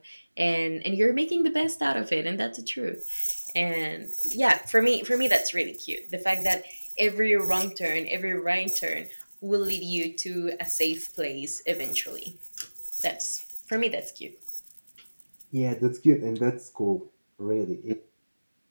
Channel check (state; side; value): inverted; both; correlation -1.00